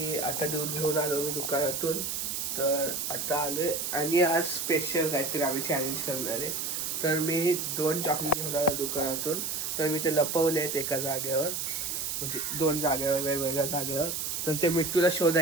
आता दूध घेऊन आलो मी दुकानातून. तर आता आलो आहे आणि आज स्पेशल काहीतरी आम्ही चॅलेंज करणार आहे. तर मी 2 चॉकलेट घेऊन आलो दुकानातून. तर मी ते लपवले आहेत एका जागेवर, म्हणजे 2 जागेवर, वेगवेगळ्या जागेवर. तर ते मिट्टूला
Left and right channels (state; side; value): noise; right; hiss, 2 dB below the sound